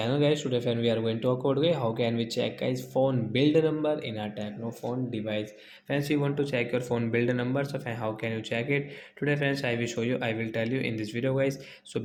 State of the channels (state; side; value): identical; both; correlation 1.00